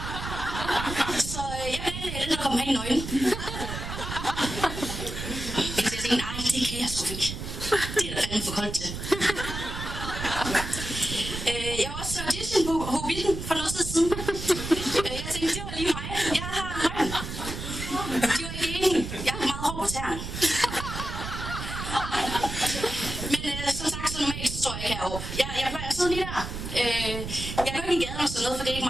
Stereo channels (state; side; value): noise; right; rumble, 7 dB below the sound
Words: Så jeg planlagde den, der kom hen i nøglen. Nej, det kan jeg sgu ikke. Det er da fandme for koldt til. Jeg var også til audition på Hobbiten for noget tid siden. Jeg tænkte, det var lige mig. Jeg har højden. De var ikke enige. Jeg har meget hår på tæerne. Men som sagt, så normalt så står jeg ikke heroppe. Jeg plejer at sidde lige der. Jeg går ikke i gaden og sådan noget, for det er